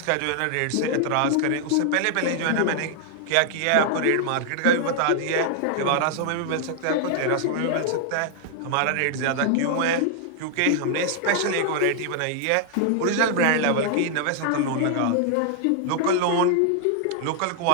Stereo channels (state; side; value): different; both; correlation 0.00